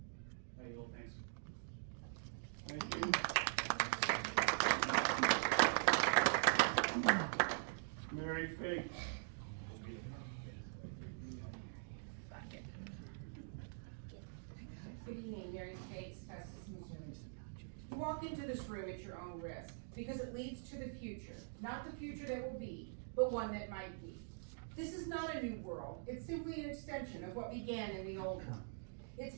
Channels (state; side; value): silent; left; digital silence